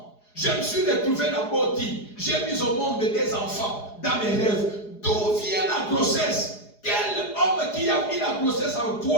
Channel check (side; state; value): right; late; 4.8 ms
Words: Je me suis retrouvé dans Boti. J'ai mis au monde des enfants dans mes rêves. D'où vient la grossesse? Quel homme qui a mis la grossesse en